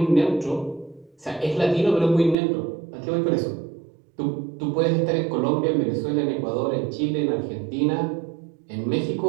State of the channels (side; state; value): left; drops out; at 2.4 s